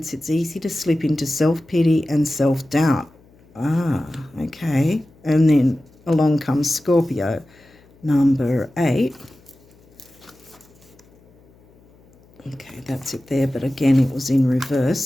it's easy to slip into self-pity and self-doubt. Ah, okay. And then along comes Scorpio, number 8. Okay, that's it there, but again, it was in reverse.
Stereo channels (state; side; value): noise; left; hum, 29 dB below the sound